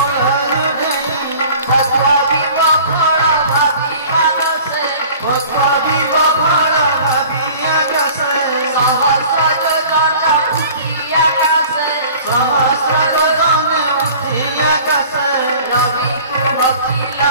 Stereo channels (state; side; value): inverted; both; correlation -0.46